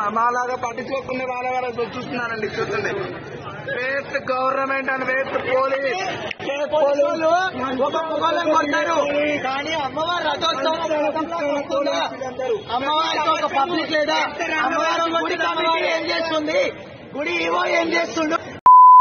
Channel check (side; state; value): both; identical; correlation 1.00